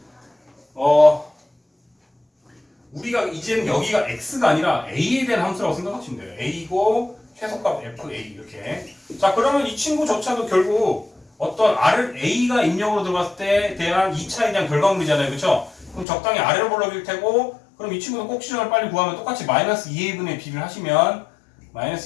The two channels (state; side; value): drops out; right; at 16.1 s